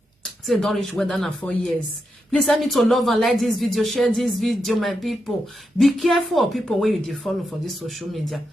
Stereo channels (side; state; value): both; normal; correlation 0.85